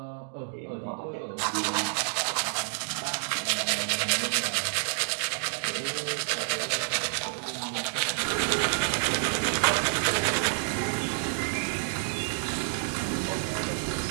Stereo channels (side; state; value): left; silent; digital silence